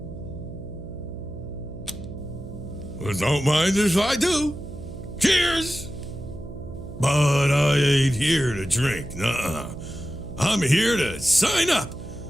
Well, don't mind if I do. Cheers! But I ain't here to drink, nuh-uh. I'm here to sign up.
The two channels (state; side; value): noise; right; hum, 12 dB below the sound